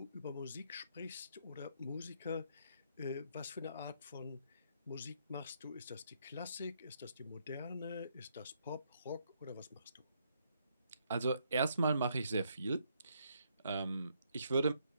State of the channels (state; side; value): inverted; both; correlation -0.73